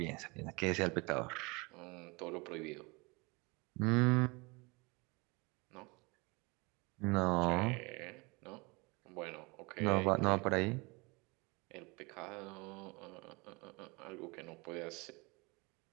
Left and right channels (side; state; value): left; quieter; 27.0 dB